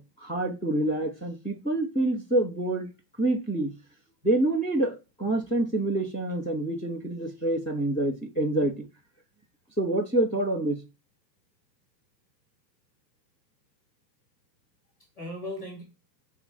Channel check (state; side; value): late; right; 1.7 ms